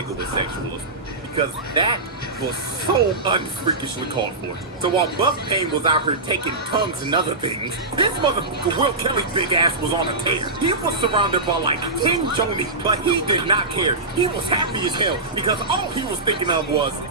with sexualism. Because that was so unfreakishly called for. So while Buff Pain was out here taking tongues and other things, this motherfucker Will Kelly's big ass was on a tear. He was surrounded by like 10 Johnny, but he did not care. He was happy as hell because all he was thinking of was,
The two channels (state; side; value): quieter; left; 3.2 dB